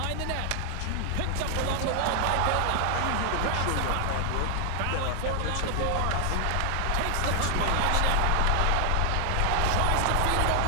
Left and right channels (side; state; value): both; different; correlation 0.00